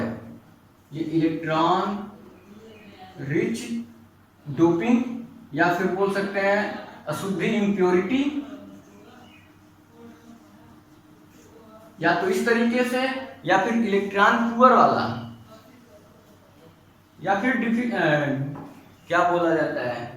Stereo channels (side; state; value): both; identical; correlation 1.00